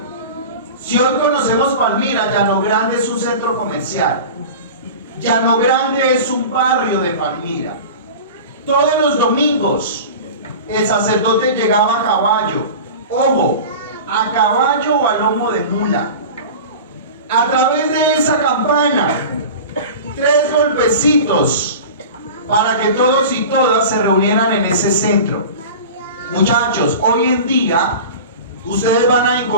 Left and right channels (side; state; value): both; inverted; correlation -0.34